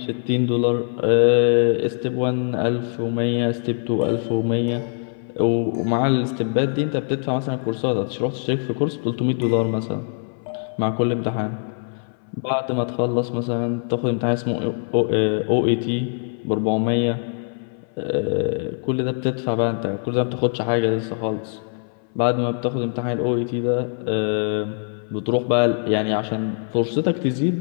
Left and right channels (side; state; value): right; silent; 62 dB below the other